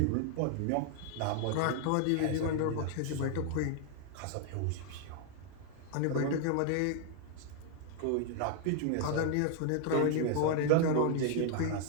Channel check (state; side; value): different; both; correlation 0.00